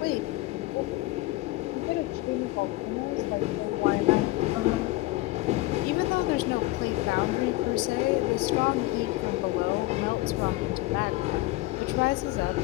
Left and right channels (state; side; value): quieter; right; 19.1 dB